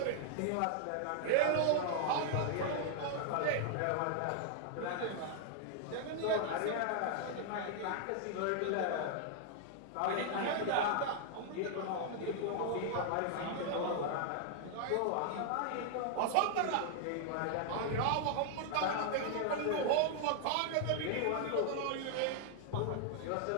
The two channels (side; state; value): both; different; correlation 0.00